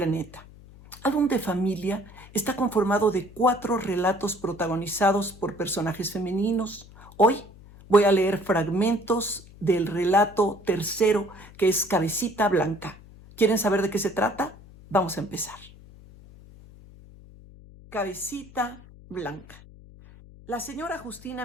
Álbum de Familia está conformado de 4 relatos protagonizados por personajes femeninos. Hoy voy a leer fragmentos del relato tercero, que es Cabecita Blanca. ¿Quieren saber de qué se trata? Vamos a empezar. Cabecita Blanca. La señora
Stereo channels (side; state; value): left; noise; hum, 21 dB below the sound